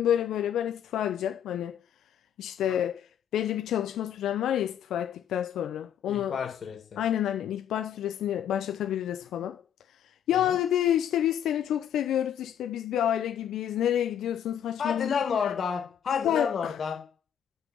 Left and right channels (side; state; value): right; quieter; 9.5 dB